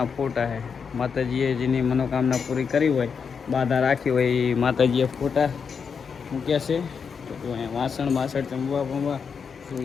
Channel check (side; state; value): right; quieter; 6.2 dB